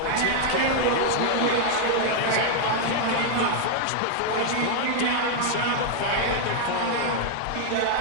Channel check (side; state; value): both; different; correlation 0.00